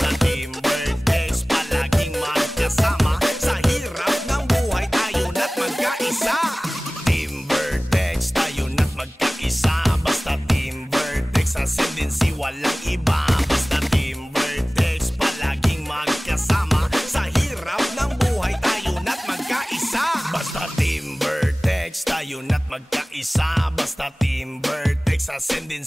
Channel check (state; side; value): normal; both; correlation 0.98